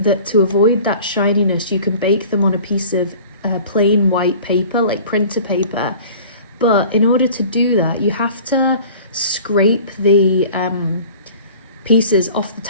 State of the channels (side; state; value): both; inverted; correlation -0.45